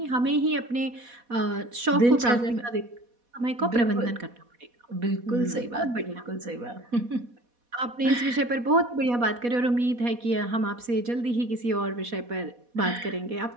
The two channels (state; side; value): late; left; 4.1 ms